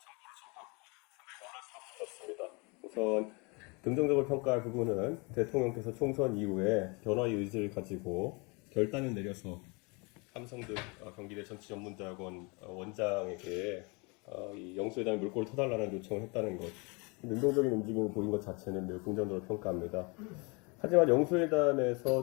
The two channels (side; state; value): right; quieter; 29.8 dB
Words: 정보를 접하고 상당히 놀랄 수가 없었습니다. 우선 긍정적으로 평가할 부분은 대통령께서 총선 이후에 변화의 의지를 가지고 결단을 내려서 삼성등 경기대 정치전문대학원 원장에게 이 영수회담의 물꼬를 터달라는 요청을 했다는 것, 능동적인 움직임을 보인 것 자체는 매우 긍정적으로 평가합니다. 하지만